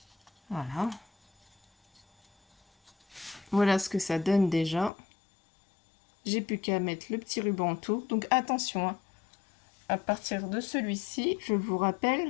Voilà. Voilà ce que ça donne déjà. J'ai plus qu'à mettre le petit ruban autour. Donc attention, hein. À partir de celui-ci, je vous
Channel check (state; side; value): drops out; right; at 4.9 s